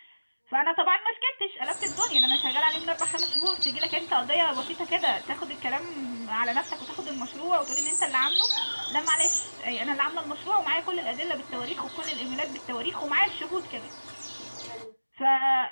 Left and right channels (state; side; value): inverted; both; correlation -1.00